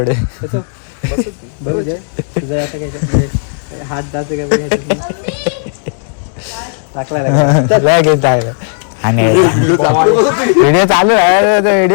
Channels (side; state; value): right; silent; digital silence